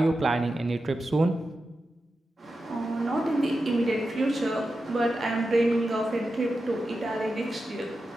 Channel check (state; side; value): normal; both; correlation 0.91